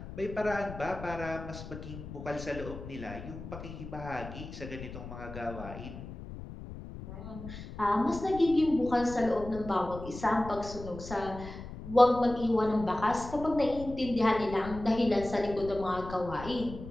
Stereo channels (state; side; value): noise; left; rumble, 11 dB below the sound